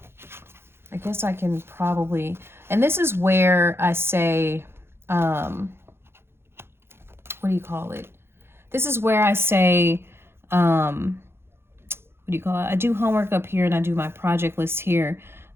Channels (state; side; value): late; left; 0.12 ms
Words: guess I can probably, and this is where I say, what do you call it? This is where I say, what do you call it? I do homework up here and I do my project list here.